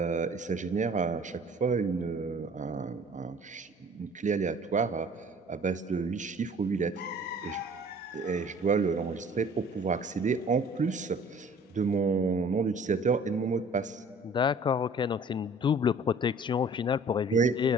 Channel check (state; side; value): normal; both; correlation 0.51